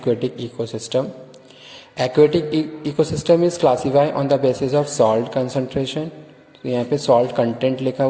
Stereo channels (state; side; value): identical; both; correlation 1.00